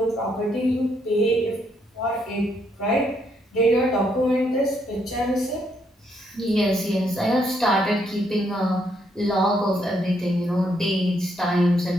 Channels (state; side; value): normal; both; correlation 0.74